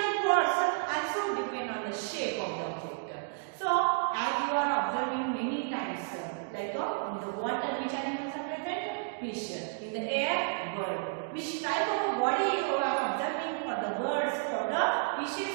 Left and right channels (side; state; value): left; silent; digital silence